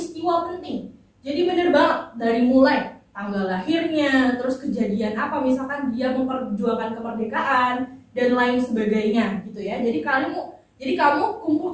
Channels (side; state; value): both; identical; correlation 1.00